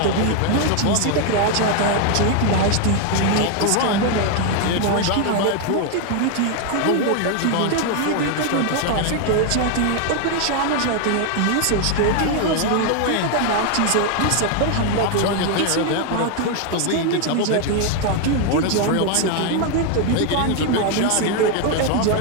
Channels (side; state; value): both; different; correlation 0.01